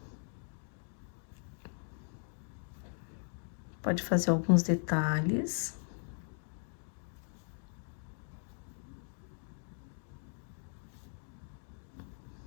Pode fazer alguns detalhes.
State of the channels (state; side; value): silent; right; 52 dB below the other